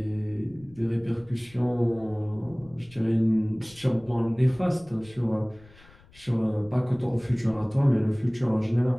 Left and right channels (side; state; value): left; noise; rumble, 25 dB below the sound